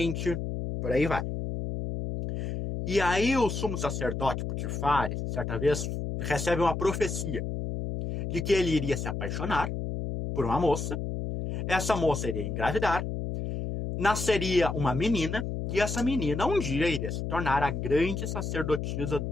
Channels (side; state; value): left; noise; hum, 3 dB below the sound